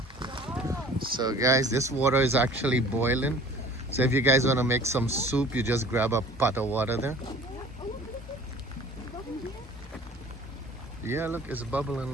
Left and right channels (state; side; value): normal; both; correlation 0.47